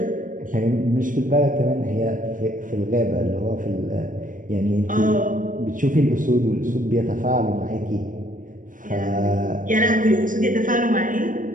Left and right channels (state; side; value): late; left; 0.39 ms